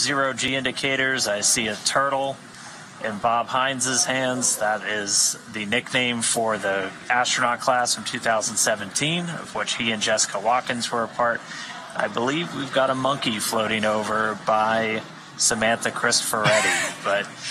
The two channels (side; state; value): both; identical; correlation 1.00